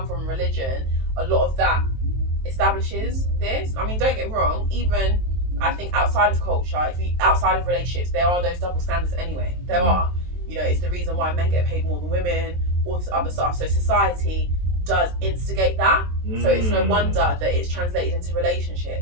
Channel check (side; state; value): left; late; 23 ms